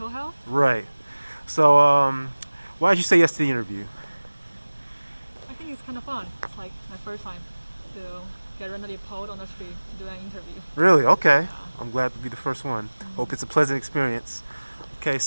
health. Right. So, why did you say yes to the interview? I think it's kind of fun. It's like my first time to get randomly pulled on the street to do an interview. Really? Okay. Yeah. I'm glad to be the first one. Hope it's a pleasant experience. Okay,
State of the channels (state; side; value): inverted; both; correlation -1.00